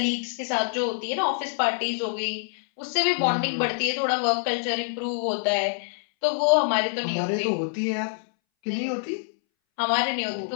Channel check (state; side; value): silent; right; 61 dB below the other